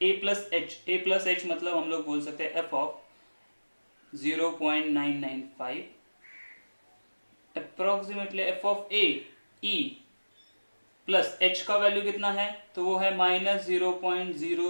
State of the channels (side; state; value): both; inverted; correlation -1.00